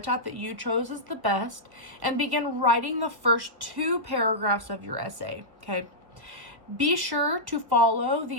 that you chose as the best, and begin writing the first 2 paragraphs of your essay, okay? Be sure to follow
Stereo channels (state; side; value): late; left; 1.4 ms